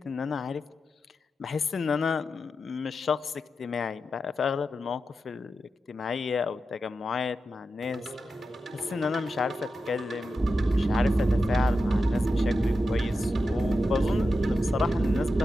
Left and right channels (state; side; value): normal; both; correlation 0.90